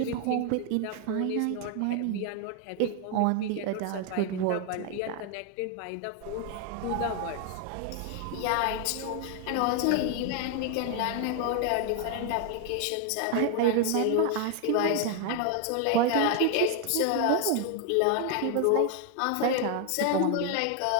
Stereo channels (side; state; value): both; different; correlation 0.01